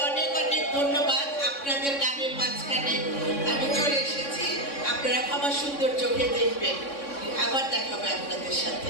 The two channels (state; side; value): late; right; 3.6 ms